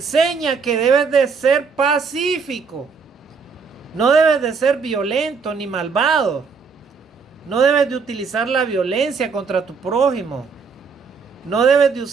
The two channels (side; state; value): left; quieter; 5.3 dB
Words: que debes de ser pacífico. No debes de ser violento ni malvado. No debes de utilizar la violencia contra tu prójimo. No debes de